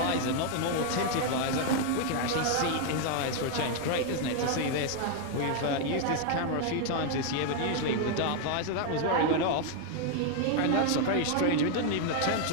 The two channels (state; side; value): different; both; correlation 0.00